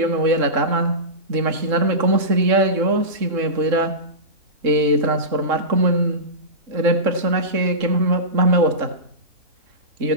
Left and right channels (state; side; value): late; left; 3.7 ms